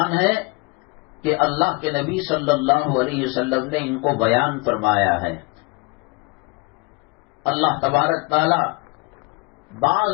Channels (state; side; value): quieter; right; 27.2 dB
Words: ہے کہ اللہ کے نبی صلی اللہ علیہ وسلم نے ان کو بیان فرمایا ہے۔ اللہ تبارک تعالی